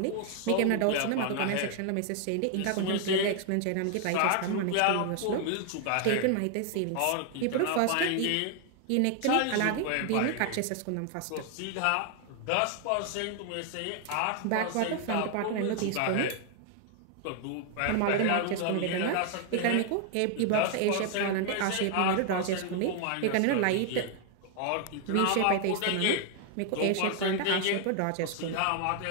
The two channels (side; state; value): both; different; correlation 0.00